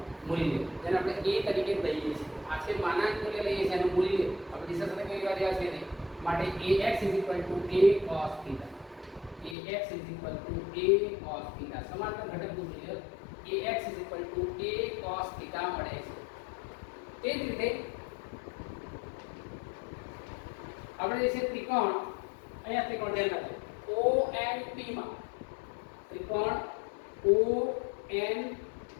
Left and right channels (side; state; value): right; drops out; at 9.6 s